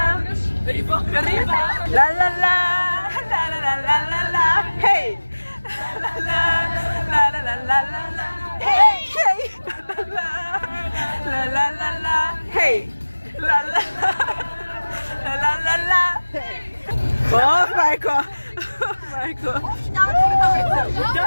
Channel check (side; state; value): both; inverted; correlation -1.00